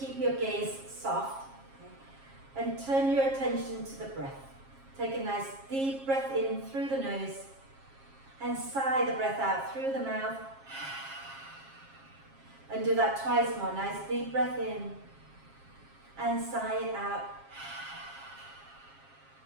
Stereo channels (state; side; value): late; left; 7.4 ms